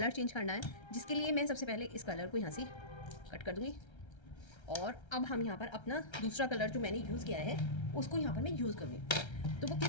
चेंज करना है, जिसके लिए मैं सबसे पहले इस कलर को यहाँ से कट कर दूँगी और अब हम यहाँ पर अपना दूसरा कलर जो मैंने यूज़ किया है उसको यहाँ पर मैं यूज़ करूँगी। तो वो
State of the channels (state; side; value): late; right; 1.3 ms